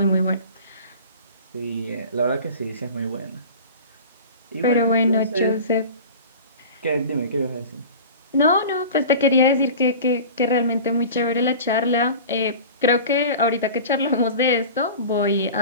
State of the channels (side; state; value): both; inverted; correlation -0.37